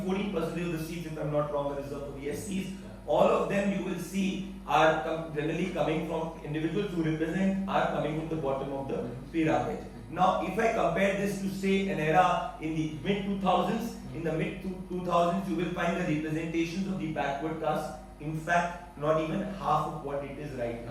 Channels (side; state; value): both; identical; correlation 1.00